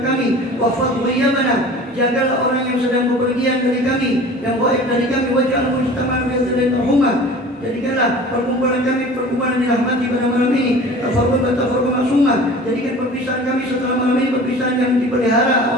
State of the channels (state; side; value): normal; both; correlation 0.41